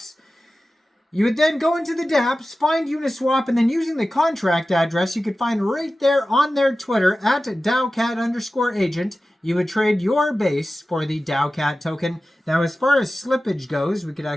You would then go into the dApps, find Uniswap, and then using the contract address you could find right there on their Twitter at Taocat_agent, you would trade your Base for the Taocat token. Now, as far as slippage goes, we could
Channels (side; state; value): both; normal; correlation 0.95